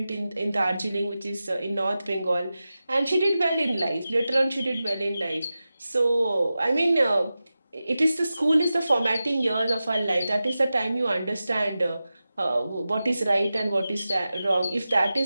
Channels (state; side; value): inverted; both; correlation -0.93